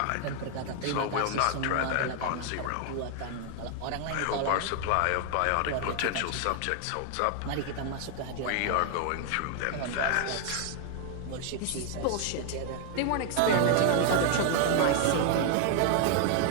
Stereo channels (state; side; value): different; both; correlation 0.00